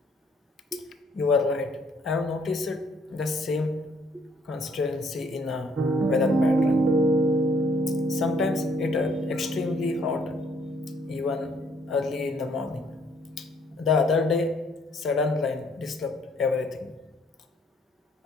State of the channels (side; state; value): both; normal; correlation 0.65